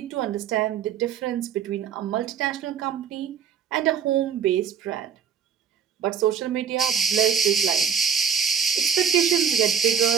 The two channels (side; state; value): left; quieter; 7.3 dB